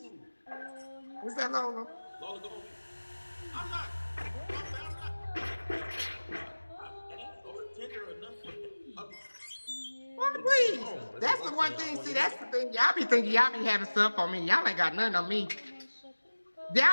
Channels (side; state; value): both; inverted; correlation -1.00